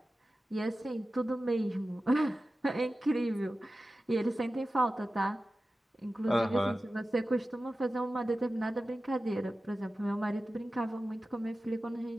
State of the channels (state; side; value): normal; both; correlation 0.95